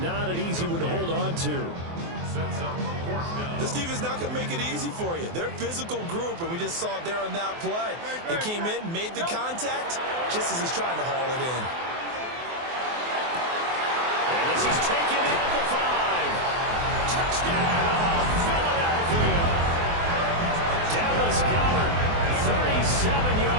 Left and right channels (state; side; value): late; left; 24 ms